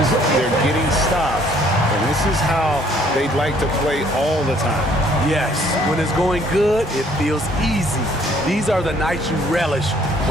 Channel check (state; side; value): normal; both; correlation 0.61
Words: They're getting stops. And this is how they'd like to play all the time. Yes, when it's going good, it feels easy. These are the nights you relish,